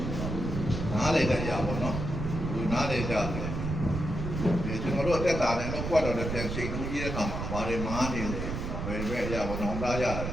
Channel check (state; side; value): noise; right; rumble, 4 dB below the sound